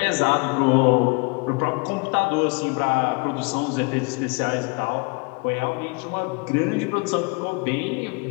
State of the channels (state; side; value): quieter; right; 30.6 dB